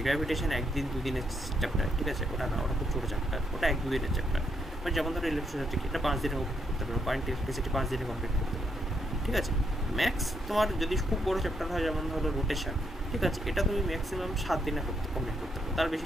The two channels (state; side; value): normal; both; correlation 0.76